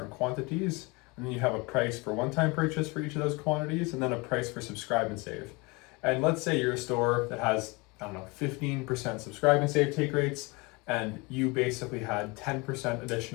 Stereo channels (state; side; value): quieter; right; 26.7 dB